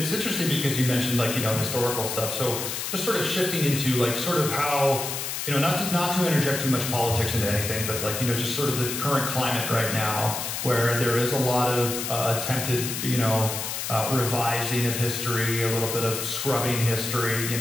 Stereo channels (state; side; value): noise; left; hiss, 4 dB below the sound